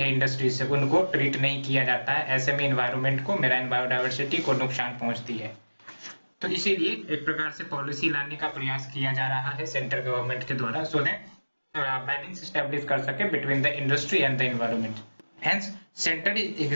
इंडस्ट्री से उनको ट्रीट नहीं किया जाता है। ऐसे में इन्वायरमेंट को, मेराइन बायोडाइवर्सिटी को नुकसान पहुंचती है। तो इसीलिए एक प्रकार से पॉलिसी लाने का प्रयास किया जा रहा है सेंट्रल गवर्नमेंट के द्वारा, सो दैट बैलेंस स्टैब्लिश कर सके between the industry and the environment. Hence centre is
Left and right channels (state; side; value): inverted; both; correlation -1.00